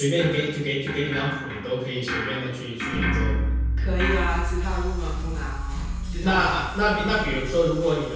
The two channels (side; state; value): both; identical; correlation 1.00